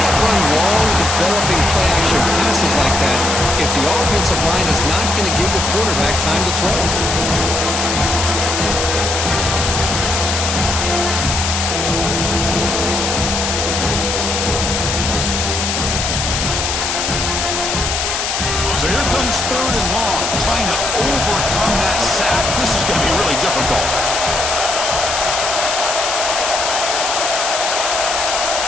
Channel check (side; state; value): left; noise; hiss, 1 dB below the sound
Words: run long, developing play action passes like that if the offensive line is not going to give the quarterback time to throw. So here comes 3rd and long, trying to overcome that sack. This is going to be really difficult.